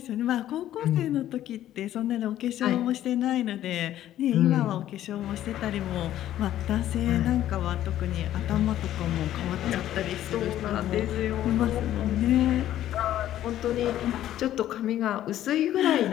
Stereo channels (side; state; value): right; quieter; 12.6 dB